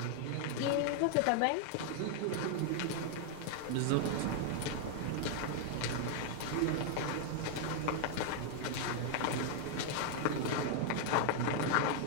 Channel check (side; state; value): both; different; correlation 0.00